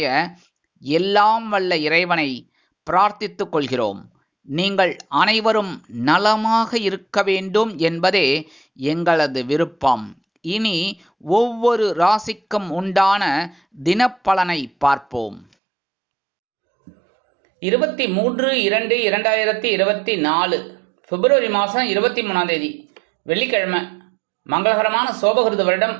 எல்லாம் வல்ல இறைவனை பிரார்த்தித்துக் கொள்கிறோம். நீங்கள் அனைவரும் நலமாக இருக்க வேண்டும் என்பதே எங்களது விருப்பம். இனி ஒவ்வொரு ராசிக்கும் உண்டான தினப்பலனை பார்ப்போம். 23/2/2024 பிப்ரவரி மாதம் 23ஆம் தேதி வெள்ளிக்கிழமை. மங்களகரமான சோபகிருத வருடம்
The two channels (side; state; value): left; drops out; at 15.5 s